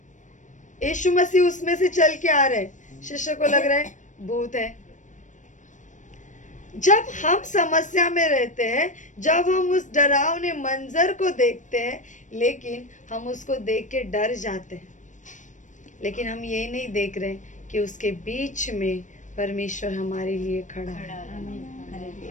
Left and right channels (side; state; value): right; late; 0.36 ms